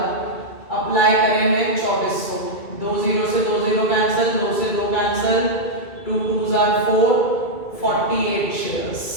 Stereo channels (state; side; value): late; right; 2.3 ms